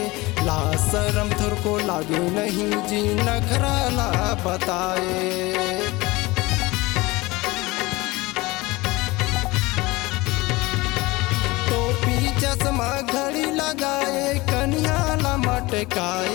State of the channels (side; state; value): right; quieter; 21.7 dB